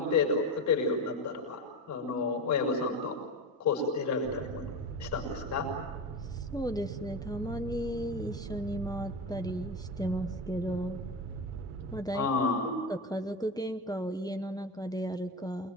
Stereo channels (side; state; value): both; normal; correlation 0.21